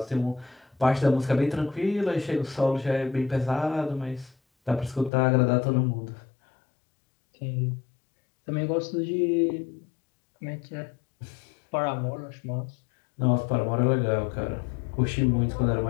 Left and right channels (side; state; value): right; drops out; at 5.1 s